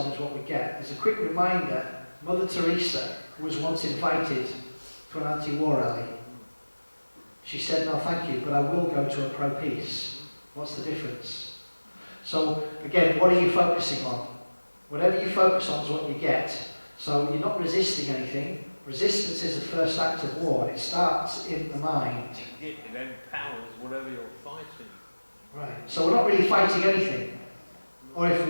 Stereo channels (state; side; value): inverted; both; correlation -1.00